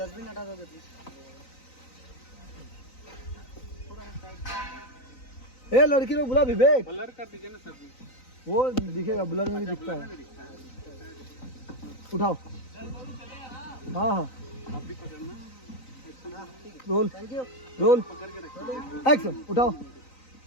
हटा दोगे प्लीज। ए लड़की लोग बुला विवेक, ब्लर कर दीजिए ना सर जी। वो दिखेगा, ब्लर में भी दिखता है। उठाओ। हाँ हाँ आप भी पकड़ना, रोल थैंक यू। रोल पकड़ के रखिए। एक्शन। उठाओ,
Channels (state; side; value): late; right; 3.9 ms